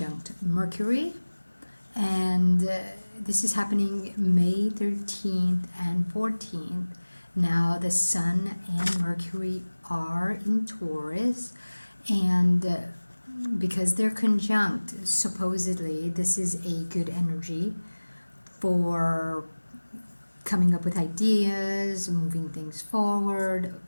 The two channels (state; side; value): inverted; both; correlation -1.00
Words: Mercury, and this is happening May 13th and 14th. Now the Sun and Mercury are in Taurus, and because they're conjunct, supposedly this is a good energy for coming up with ideas, moving things forward.